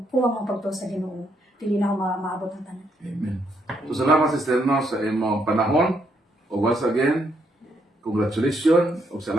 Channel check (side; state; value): both; normal; correlation 0.75